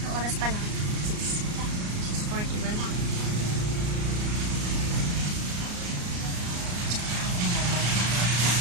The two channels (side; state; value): left; late; 34 ms